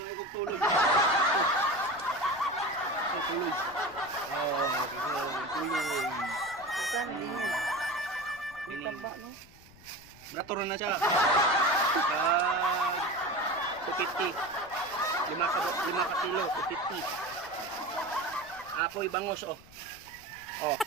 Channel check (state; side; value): noise; left; rumble, 24 dB below the sound